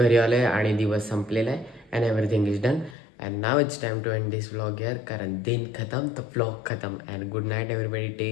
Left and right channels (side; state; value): right; drops out; at 3.0 s